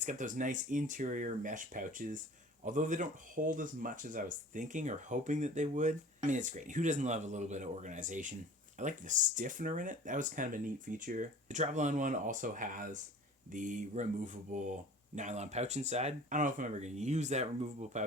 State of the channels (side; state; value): both; normal; correlation 0.43